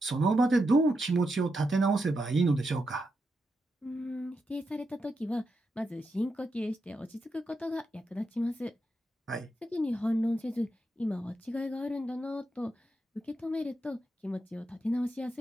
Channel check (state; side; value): normal; both; correlation 0.85